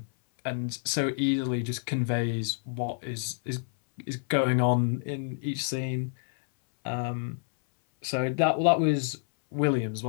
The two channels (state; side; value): silent; right; 59 dB below the other